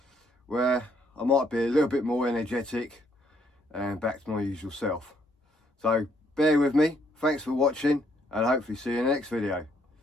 where I might be a little bit more energetic and back to my usual self. So bear with me, thanks for watching, and hopefully see you in the next video.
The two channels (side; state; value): both; normal; correlation 0.70